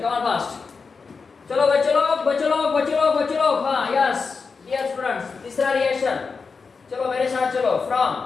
कम ऑन फास्ट। चलो बच्चों लोग, हाँ यस डियर स्टूडेंट्स, तीसरा रिएक्शन। चलो मेरे साथ चलो,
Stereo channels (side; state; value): right; quieter; 4.9 dB